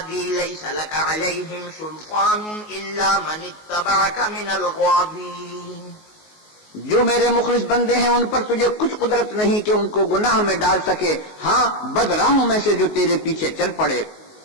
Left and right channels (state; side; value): late; right; 19 ms